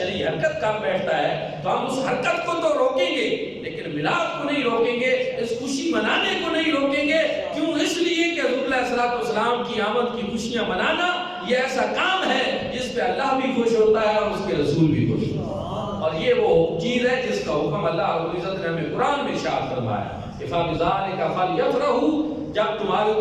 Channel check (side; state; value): both; identical; correlation 1.00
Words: حرکت کر بیٹھتا ہے تو ہم اس حرکت کو تو روکیں گے لیکن میلاد کو نہیں روکیں گے, اس خوشی منانے کو نہیں روکیں گے. کیوں؟ اس لیے کہ حضور علیہ السلام کی آمد کی خوشیاں منانا یہ ایسا کام ہے جس پہ اللہ بھی خوش ہوتا ہے اور اس کے رسول بھی خوش ہوتا ہے. اور یہ وہ چیز ہے جس کا حکم اللہ رب العزت نے ہمیں قرآن میں ارشاد فرمایا, فَبِذَلِكَ فَلْيَفْرَحُوا, جب تمہارے